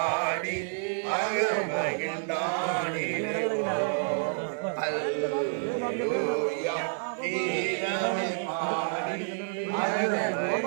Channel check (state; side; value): silent; left; digital silence